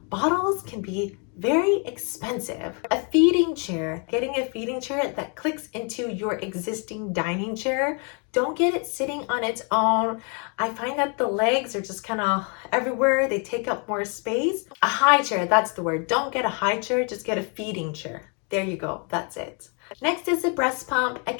Bottles can be very expensive. A feeding chair, getting a feeding chair that clicks into your existing dining chair. Don't get it sitting on its own. I find that the legs are just kind of everywhere. They take up more space. A high chair, that's the word. Don't get a high chair, just get a feeding chair. There you go, that's it. Next is the breast pump.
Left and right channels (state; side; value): quieter; right; 36.8 dB